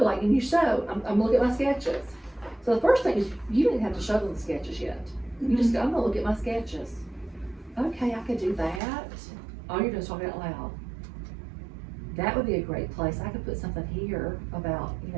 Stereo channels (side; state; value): left; drops out; at 8.8 s